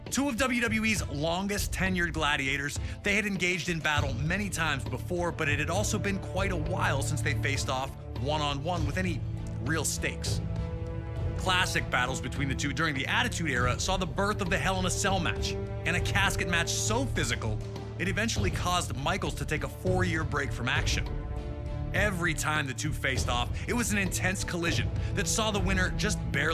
Two of WWE's longest tenured gladiators, they had engaged in battle many times before, but it had also been quite a while since they faced off one-on-one with any real stakes. Classic battles between the two during the Attitude Era saw the birth of the Hell in a Cell match, and a casket match so physical, it eventually caused Michaels to take a 4-year break from action. Every time the two faced off, it was an intense collision that saw the winner just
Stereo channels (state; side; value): identical; both; correlation 1.00